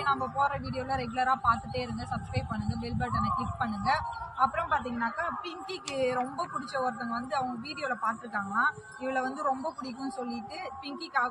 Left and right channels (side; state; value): both; identical; correlation 1.00